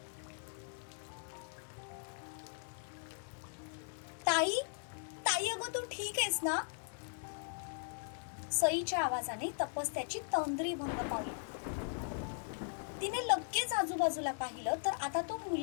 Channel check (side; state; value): right; silent; digital silence